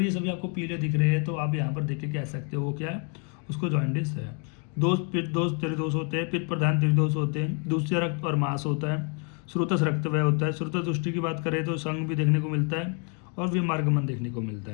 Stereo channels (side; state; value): right; quieter; 38.2 dB